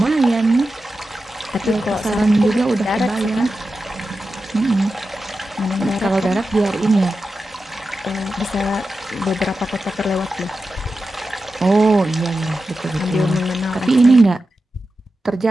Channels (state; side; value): normal; both; correlation 0.92